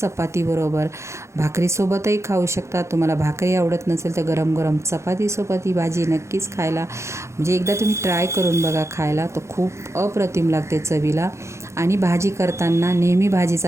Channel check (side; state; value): left; late; 0.14 ms